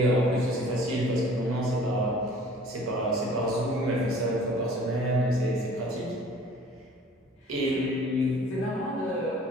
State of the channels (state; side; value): normal; both; correlation 0.50